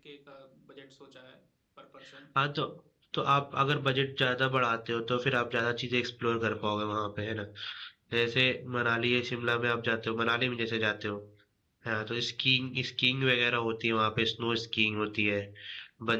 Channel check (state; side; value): identical; both; correlation 1.00